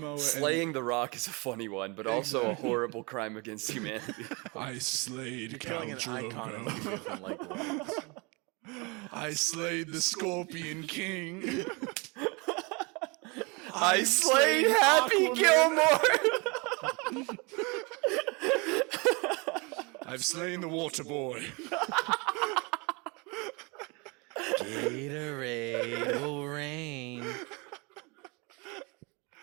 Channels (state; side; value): quieter; left; 28.9 dB